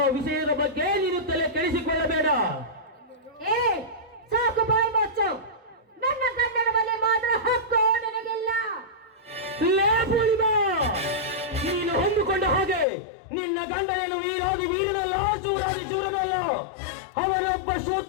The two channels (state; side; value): drops out; right; at 12.9 s